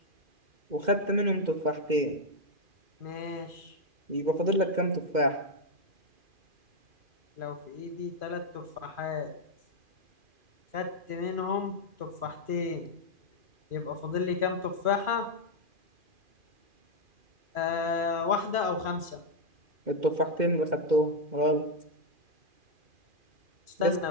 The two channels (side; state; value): left; late; 2.4 ms